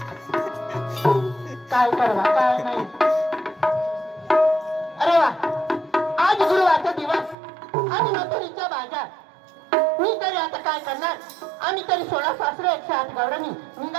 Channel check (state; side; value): drops out; left; at 7.4 s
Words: काय करवा काय नाही. अरे वा आज गुरुवारचा दिवस आणि मथुरीचा बाजार. मी तरी आता काय करणार. आम्ही तरी 16 सासरे 108 गवळणी